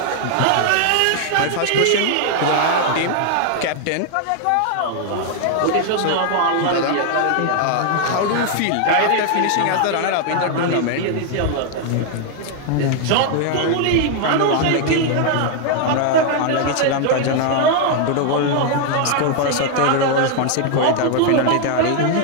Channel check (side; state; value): both; different; correlation 0.00